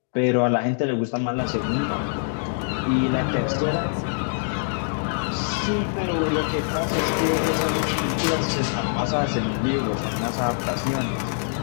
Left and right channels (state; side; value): silent; right; digital silence